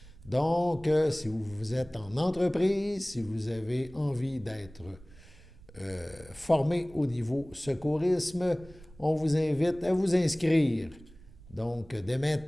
Donc, si vous êtes en entreprise, si vous avez envie d'être formé au niveau secourisme, on vous invite à vous inscrire. Donc, dès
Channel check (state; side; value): noise; right; rumble, 22 dB below the sound